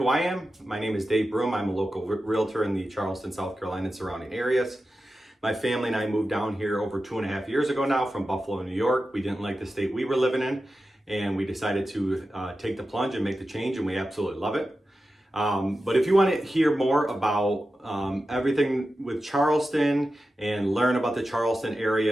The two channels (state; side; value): normal; both; correlation 0.92